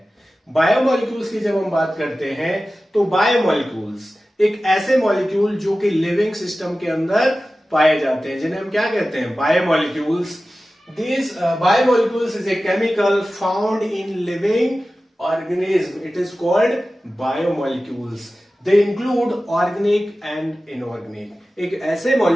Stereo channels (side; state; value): both; normal; correlation 0.95